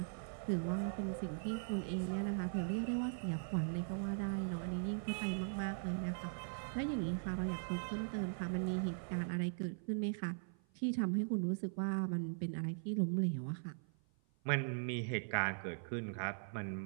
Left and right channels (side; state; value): left; silent; 51 dB below the other